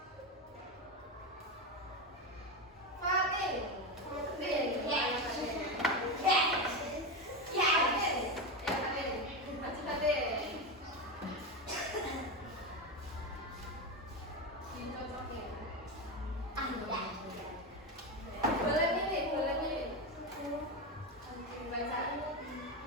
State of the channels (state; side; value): normal; both; correlation 0.15